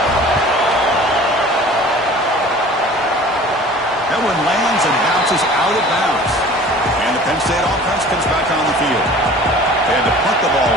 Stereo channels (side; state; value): both; normal; correlation 0.45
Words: That one lands and bounces out of bounds. And the Penn State offense comes back on the field. They had to punt the ball